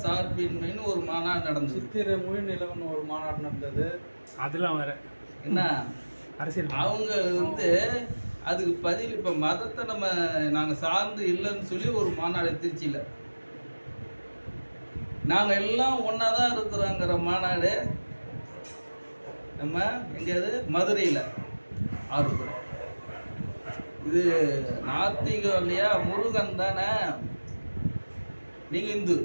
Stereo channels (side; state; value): both; inverted; correlation -1.00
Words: சார்பின்மைன்னு ஒரு மாநாடு நடந்தது. சித்திரை மொழி நிலவன் ஒரு மாநாடு நடந்தது. அதெல்லாம் வேற என்ன அரசியல். அவங்க வந்து அதுக்கு பதில் இப்போ மதத்தை நாங்கள் சார்ந்து இல்லைன்னு சொல்லி ஒரு மாநாடு திருச்சியில் நாங்கள் எல்லாம் ஒன்றா தான் இருக்கிறோங்கிற மாநாடு நம்ம எங்கேயாவது மதுரையில் ஆர்வப்படுறோம். இது நாத்திகம் இல்லையா? முருகன் தானே. நீங்கள் இந்து,